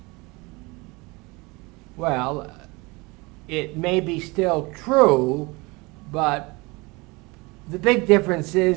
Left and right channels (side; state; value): left; quieter; 25.3 dB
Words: Well, it may be still true, but the big difference